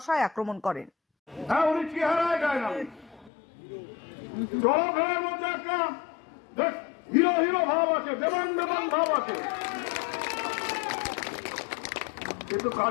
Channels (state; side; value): drops out; right; at 3.3 s